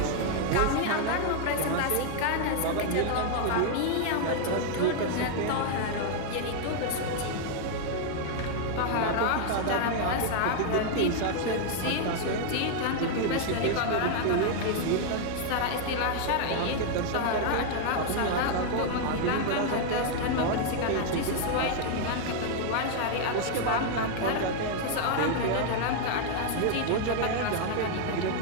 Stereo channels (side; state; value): both; different; correlation 0.00